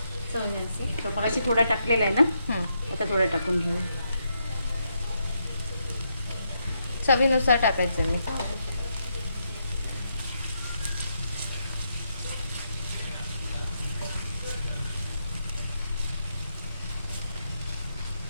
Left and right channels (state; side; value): inverted; both; correlation -0.80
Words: चवण्याचे. तो मगाशी थोडा टाकलेला आहे ना, आता थोडा टाकून घेऊ. चवीनुसार टाकायचं मी.